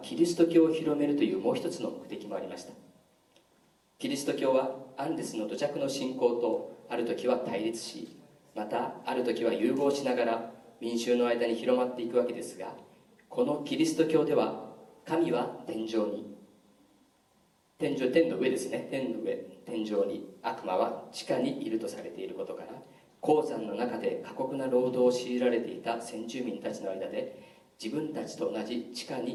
キリスト教を広めるというもう一つの目的もありました。キリスト教はアンデスの土着の信仰とある時は対立し、またある時は融合しながら民衆の間に広まっていくわけですが、このキリスト教では神は天上に、天の上ですね、天上に、悪魔は地下にいるとされていることから、鉱山の中で過酷な労働を強いられていた先住民たちの間で、自分たちと同じ地下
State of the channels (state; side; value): identical; both; correlation 1.00